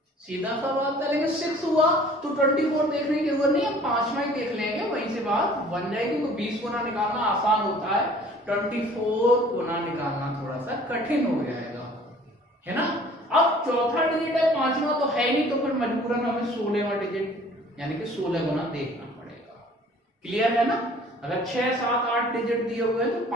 सीधा सा बात करेंगे, 6 हुआ तो 24 देखने की जरूरत नहीं है, 5वां ही देख लेंगे, वहीं से बात बन जाएगी। तो 20 गुना निकालना आसान होता है, 24 गुना निकालना थोड़ा सा कठिन हो जाएगा, है ना। अब चौथा डिजिट है, 5वां तो है नहीं, तो फिर मजबूरन हमें 16वां डिजिट यानी कि 16 गुना देखना पड़ेगा। क्लियर है ना। अगर 6 7 8 डिजिट दिए हुए हैं तो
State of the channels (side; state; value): both; normal; correlation 0.52